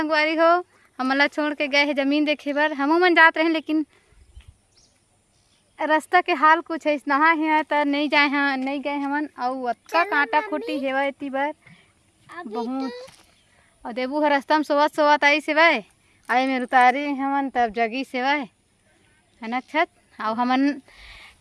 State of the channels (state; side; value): identical; both; correlation 1.00